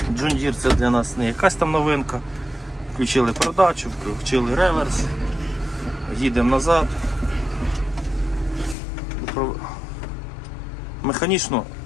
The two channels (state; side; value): drops out; right; at 8.8 s